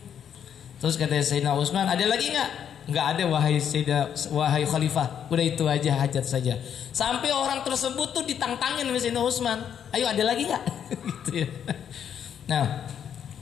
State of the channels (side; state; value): right; quieter; 8.7 dB